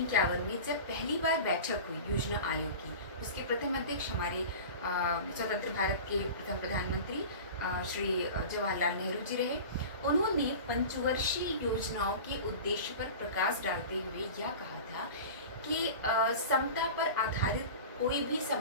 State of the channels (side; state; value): both; inverted; correlation -0.34